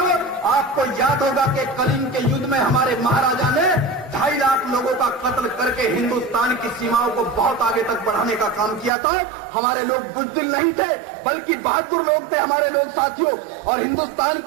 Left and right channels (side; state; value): left; drops out; at 8.9 s